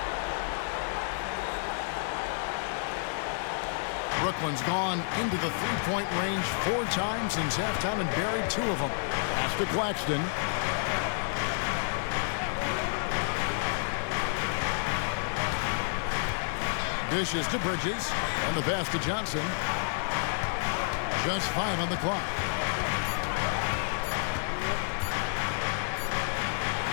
Brooklyn's gone into the three-point range 4 times since halftime and buried 2 of them. Pass to Claxton. Dishes to Bridges. On the pass to Johnson. Just 5 on the clock.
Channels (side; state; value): right; silent; digital silence